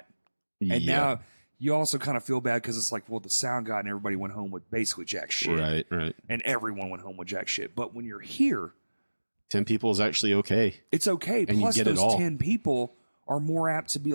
And now you also kind of feel bad because it's like, well, the sound guy and everybody went home with basically jack shit. Right. And everyone went home with jack shit. But when you're here, 10 people is actually okay. it's okay. And Plus, you get those it all. 10 people are more apt to be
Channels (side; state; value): both; inverted; correlation -1.00